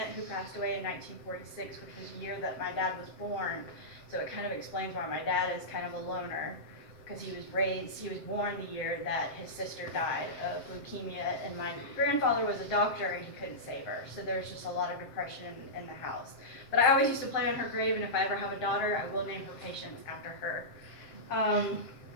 who passed away in 1946, which was the year that my dad was born. So it kind of explains why my dad is kind of a loner, because he was born the year that his sister died of leukemia, and my grandfather was a doctor and he couldn't save her. So there was just a lot of depression in the house. But I always used to play on her grave, and if I ever have a daughter, I will name her Patience after her.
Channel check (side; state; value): right; late; 7.7 ms